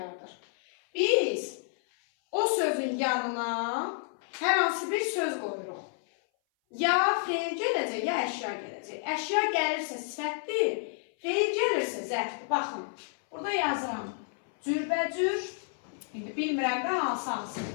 Biz o sözün yanına hər hansı bir söz qoyuruq. Ya feil gələcək, ya əşya gələcək. Əşya gəlirsə sifətdir, feil gəlirsə zərfdir. Baxın, burada yazıram. Cürbəcür, indi bilmirəm də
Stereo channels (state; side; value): silent; right; 57 dB below the other